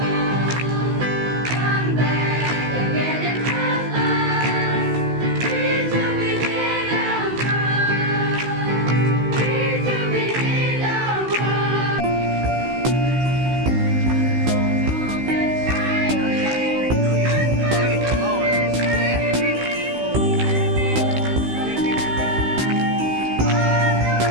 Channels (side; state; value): left; late; 16 ms